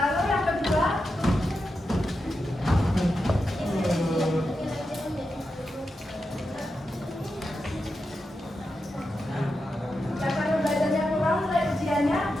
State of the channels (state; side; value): normal; both; correlation 0.88